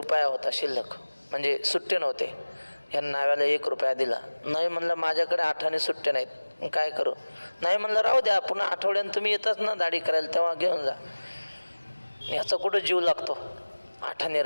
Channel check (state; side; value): inverted; both; correlation -1.00